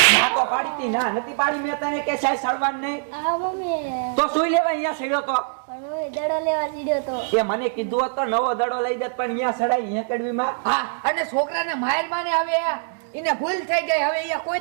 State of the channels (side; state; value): left; silent; digital silence